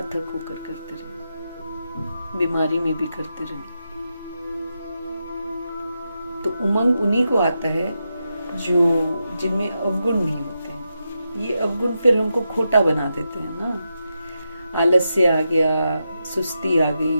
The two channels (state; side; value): inverted; both; correlation -0.87